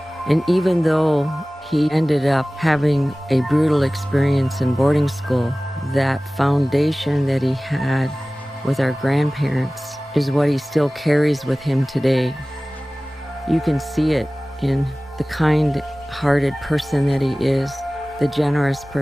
And even though he ended up having a brutal experience in boarding school, that foundation that he had with our grandparents is what he still carries with him today. You can see it in the kind-hearted person that he is, the generous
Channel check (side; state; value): both; normal; correlation 0.98